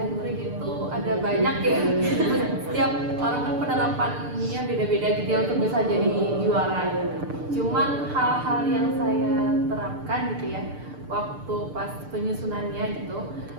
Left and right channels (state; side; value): late; left; 6.8 ms